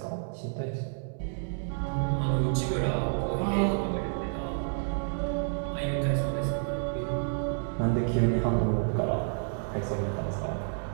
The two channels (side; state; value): left; silent; digital silence